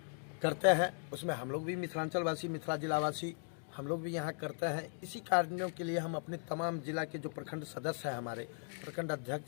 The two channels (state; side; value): silent; right; 52 dB below the other